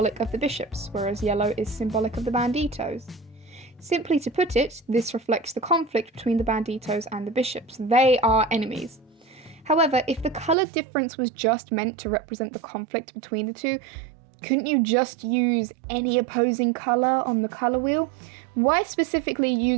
of the bishops, whereas yellow is symbolic of the banditos. Simply to put it, this reflects the conflict between the banditos and the bishops. They are enemies. However, if the colour difference was just meant to represent the conflict between the two, couldn't you just use any opposing colour on the colour wheel? Why specifically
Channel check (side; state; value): left; drops out; at 10.6 s